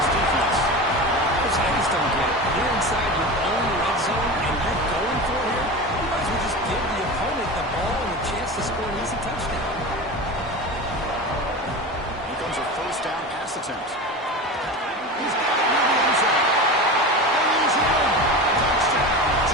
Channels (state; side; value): normal; both; correlation 0.28